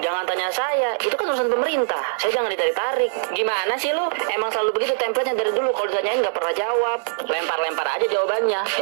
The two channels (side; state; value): left; silent; 60 dB below the other